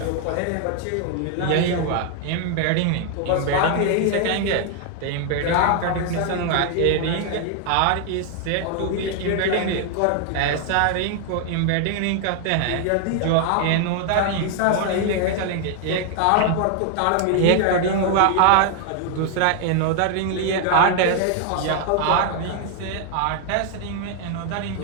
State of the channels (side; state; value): both; different; correlation 0.00